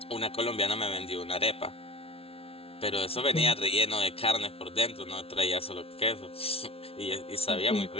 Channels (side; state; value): right; late; 0.27 ms